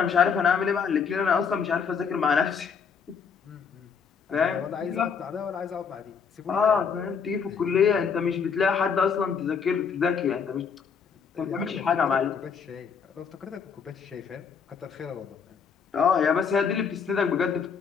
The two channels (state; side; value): quieter; right; 6.3 dB